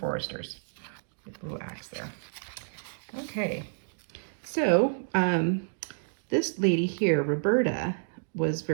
With a little axe there. Okay, so this lady here, Roberta, was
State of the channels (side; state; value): left; silent; digital silence